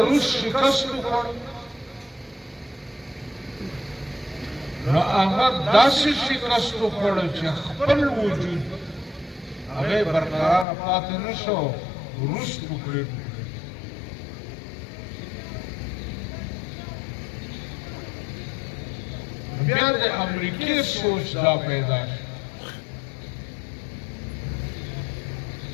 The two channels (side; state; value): right; drops out; at 10.7 s